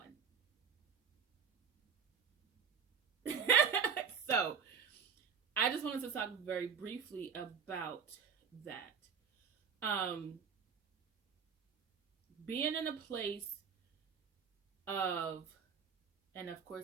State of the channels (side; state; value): left; quieter; 6.5 dB